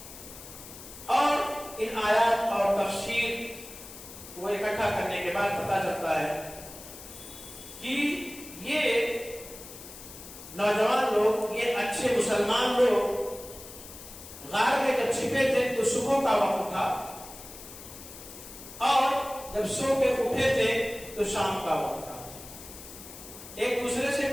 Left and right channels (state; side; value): noise; left; hiss, 15 dB below the sound